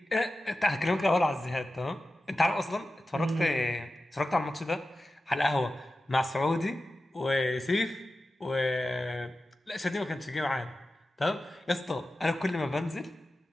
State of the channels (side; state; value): both; normal; correlation 0.94